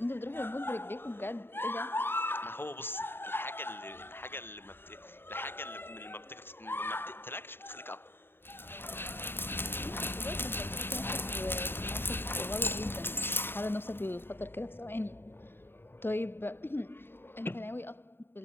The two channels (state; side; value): late; right; 0.11 ms